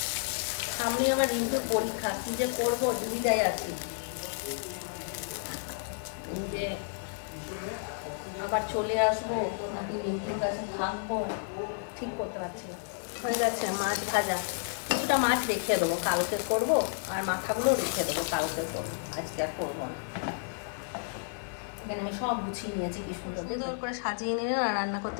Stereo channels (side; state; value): right; silent; 57 dB below the other